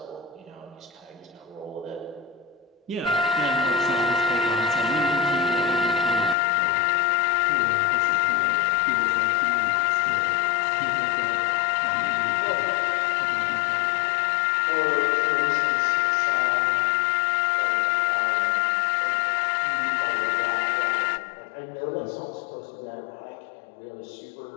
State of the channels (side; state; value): right; drops out; at 6.4 s